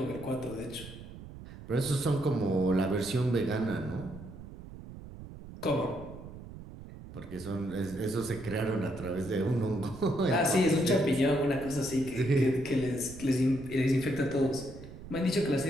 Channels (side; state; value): right; noise; rumble, 14 dB below the sound